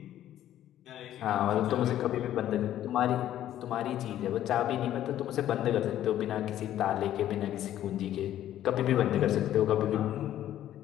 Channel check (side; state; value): right; quieter; 12.2 dB